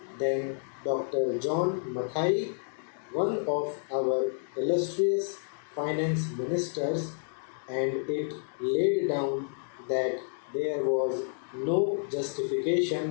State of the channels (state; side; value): silent; right; digital silence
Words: than Dr. John Mathai, one of our illustrious finance ministers, and it laid down that there was no